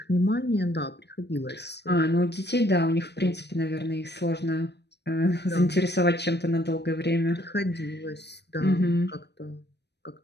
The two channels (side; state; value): right; late; 0.49 ms